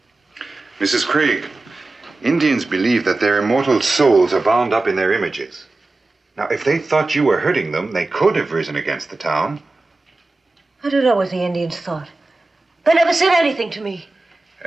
Mrs. Craig, Indians believe that their immortal souls are bound up in their images. Now, if they thought you were hurting them, they could have risen against the town. I don't know what the Indians thought. They never said anything to me.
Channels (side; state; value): left; quieter; 3.1 dB